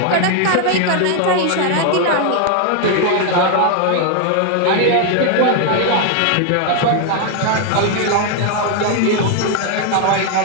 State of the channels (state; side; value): different; both; correlation 0.01